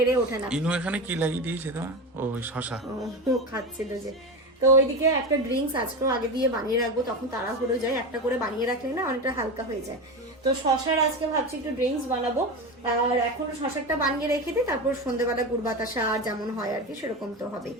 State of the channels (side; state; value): both; normal; correlation 0.21